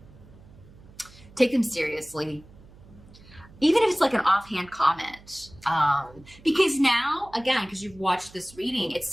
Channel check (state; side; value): noise; right; hum, 23 dB below the sound